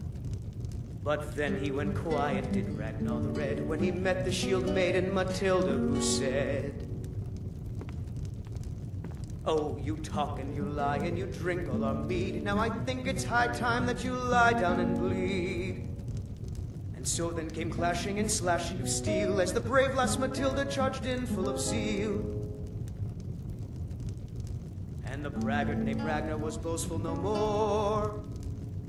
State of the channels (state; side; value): identical; both; correlation 1.00